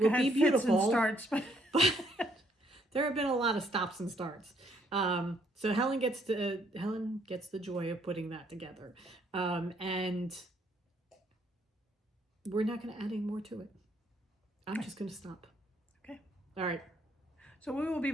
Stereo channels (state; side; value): normal; both; correlation 0.69